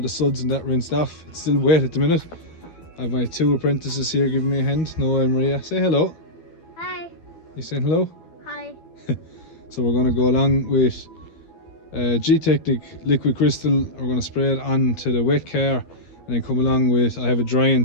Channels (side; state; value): right; late; 12 ms